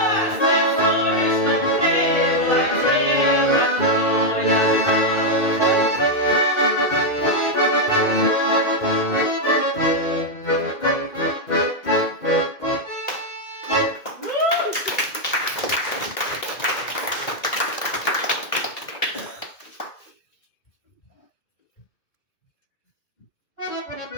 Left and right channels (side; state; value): right; late; 2.1 ms